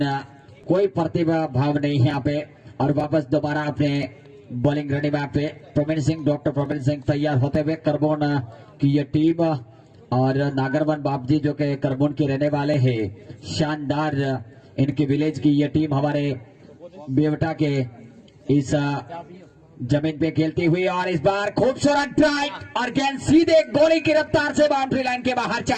कोई प्रतिभा भाव नहीं है यहाँ पे और वापस दोबारा अपने बॉलिंग रेडी मैप पे प्रवीण सिंह डॉक्टर प्रवीण सिंह तैयार होते हुए करबोन की ये टीम और नागरवन बापजी जो कि करबोन के रहने वाले हैं। शानदार इनकी विलेज की ये टीम हमारे बेवटा के इस जमीन पे खेलती हुई और इस बार खूबसूरत ड्राइव और गेंद सीधे गोली की रफ्तार से बाउंड्री लाइन के बाहर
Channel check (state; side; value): identical; both; correlation 1.00